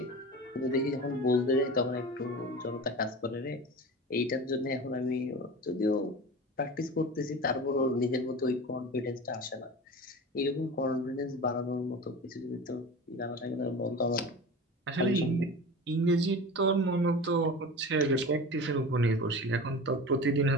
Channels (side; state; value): both; normal; correlation 0.32